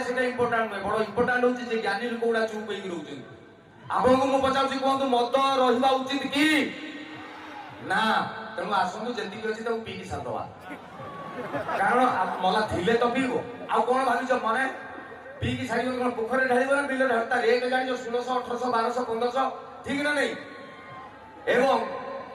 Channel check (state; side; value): identical; both; correlation 1.00